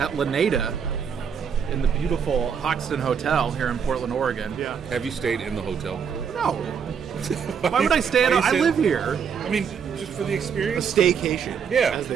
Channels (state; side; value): quieter; left; 7.0 dB